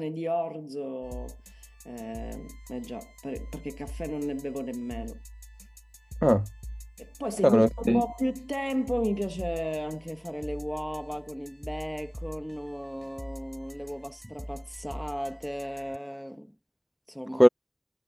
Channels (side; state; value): both; identical; correlation 1.00